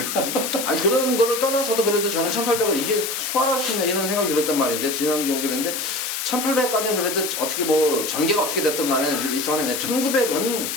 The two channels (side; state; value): left; noise; hiss, 3 dB below the sound